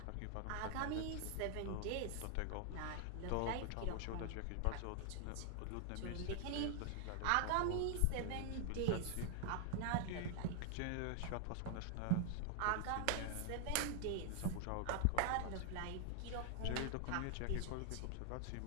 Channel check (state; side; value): different; both; correlation 0.00